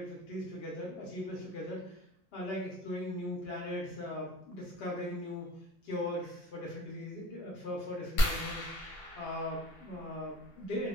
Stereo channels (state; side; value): normal; both; correlation 0.44